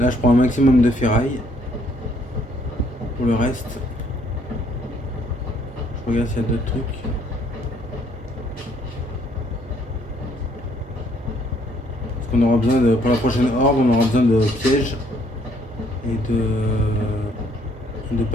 je prends un maximum de ferraille. Pour le reste, je regarde s'il y a d'autres trucs. Parce qu'on aura besoin de, pour la prochaine horde, on aura besoin de pièges et de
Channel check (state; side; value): normal; both; correlation 0.66